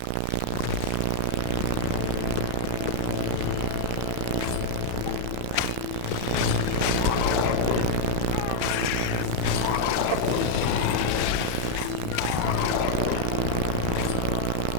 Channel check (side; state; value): both; different; correlation 0.00